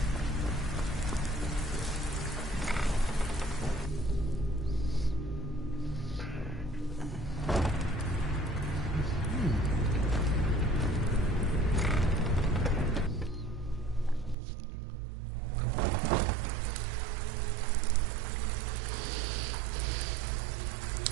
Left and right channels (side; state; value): left; drops out; at 14.4 s